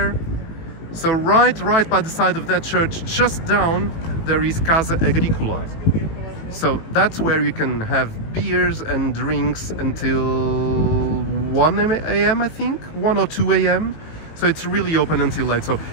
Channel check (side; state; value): right; late; 18 ms